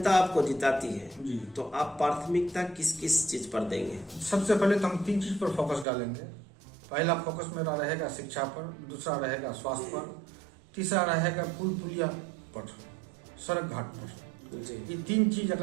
आपको जिताती है जी, तो आप प्राथमिकता किस किस चीज पर देंगे? सबसे पहले तो हम 3 चीज पर फोकस डालेंगे। पहला फोकस मेरा रहेगा शिक्षा पर, दूसरा रहेगा स्वास्थ्य पर, तीसरा रहेगा पुल पुलिया पर, सड़क घाट पर। जी, ये 3 चीज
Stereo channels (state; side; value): drops out; left; at 5.9 s